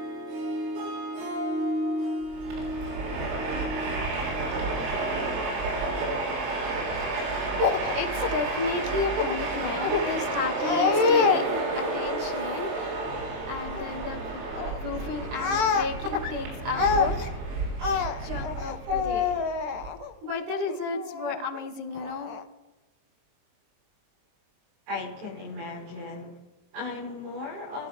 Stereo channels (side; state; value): left; late; 23 ms